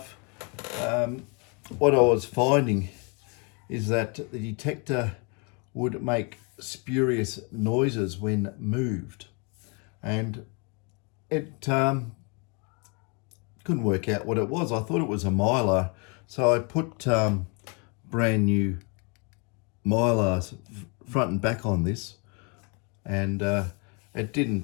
what I was finding is that the detector would make spurious noises when moved, and it couldn't work out what it was. I thought it was a mylar, so I put brand new mylars front and back on this, and it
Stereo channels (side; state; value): right; quieter; 33.7 dB